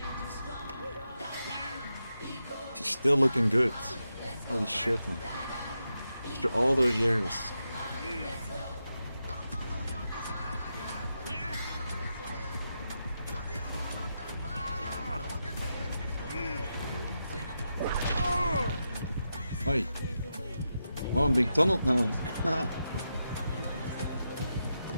Still looking good. Holy shit, man. After all those years. Oi. Oh, I'm being tunneled now.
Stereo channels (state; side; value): inverted; both; correlation -0.87